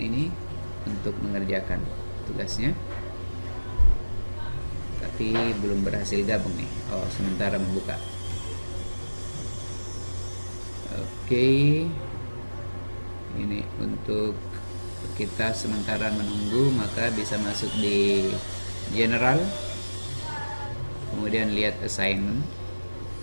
untuk mengerjakan tugasnya, tapi belum berhasil gabung nih. Oh, sementara membuka. Oke, ini untuk kita sementara menunggu, maka bisa masuk di general, kemudian lihat assignment.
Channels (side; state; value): both; inverted; correlation -1.00